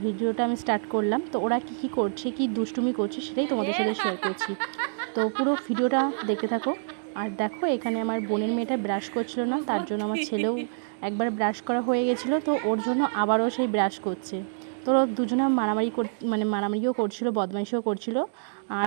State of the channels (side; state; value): left; silent; digital silence